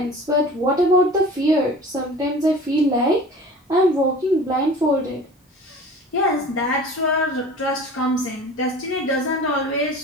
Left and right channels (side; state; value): both; normal; correlation 0.41